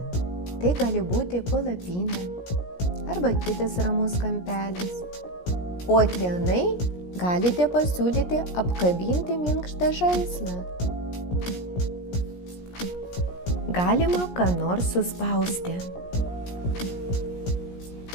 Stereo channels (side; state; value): right; late; 17 ms